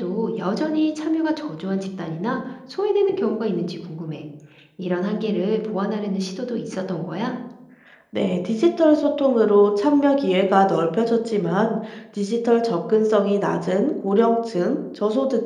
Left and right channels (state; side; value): identical; both; correlation 1.00